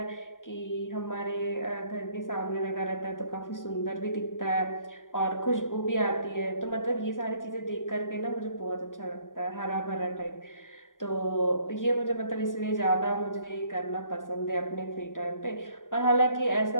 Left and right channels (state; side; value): late; right; 0.88 ms